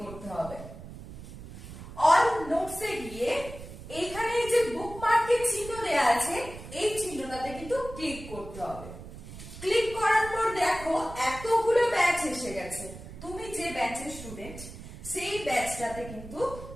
করতে হবে। অল নোটসে গিয়ে এখানে যে বুকমার্কের চিহ্ন দেয়া আছে এই চিহ্নটাতে কিন্তু ক্লিক করতে হবে। ক্লিক করার পর দেখো এতগুলো ব্যাচ এসে গেছে। তুমি যে ব্যাচের স্টুডেন্ট সেই ব্যাচটাতে কিন্তু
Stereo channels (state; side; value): noise; right; rumble, 13 dB below the sound